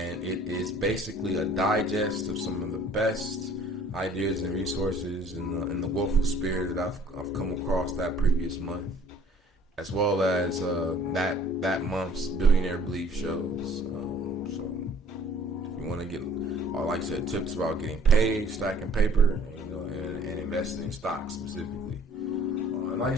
it is basically a digest of some of the best ideas and resources in the willful spirit that I've come across that previous month, as well as that month's Billionaire Belief shows. So if you want to get, like I said, tips about getting paid, stacking paper, and investing in stocks specifically. And like I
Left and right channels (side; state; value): both; normal; correlation 0.55